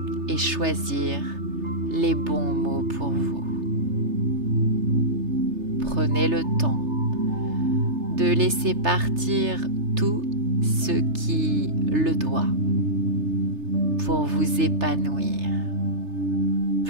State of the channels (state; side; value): late; left; 3.3 ms